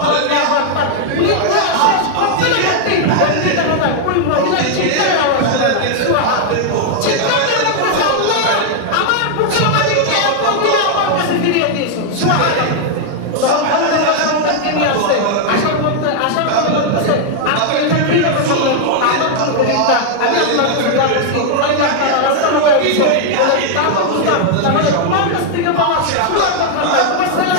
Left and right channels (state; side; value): different; both; correlation 0.00